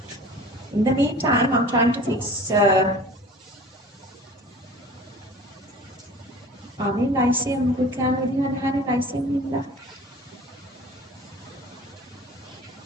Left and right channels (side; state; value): both; normal; correlation 0.43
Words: In the meantime, I'm trying to fix lyceum. We can have lyceum in that.